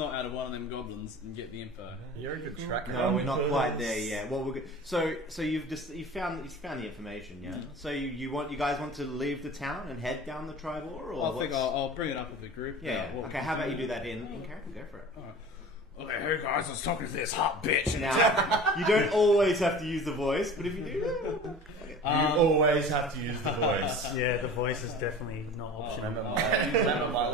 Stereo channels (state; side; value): normal; both; correlation 0.39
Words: out of one of them goblins and get the info. You're a good tracker. No, we're not quite there yet. Well, so you found the information, yeah. So you guys want to leave the town and head down the tribal, or I think what's- I'll bring it up with the group. yeah. what Okay, we how can about you do that in character? Go for it. Alright. Okay, hey guys, I was talking to this hot bitch. Now, you don't always have to use the voice, but if you do, You always have to use the voice. Yeah, the voice is definitely not optional. Remember my